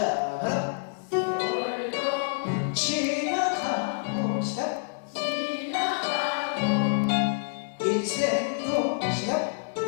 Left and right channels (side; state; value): right; silent; 56 dB below the other